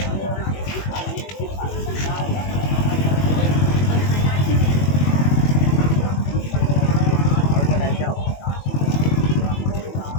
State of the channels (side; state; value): right; late; 21 ms